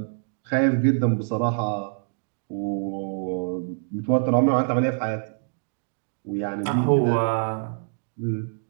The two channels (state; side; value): silent; left; digital silence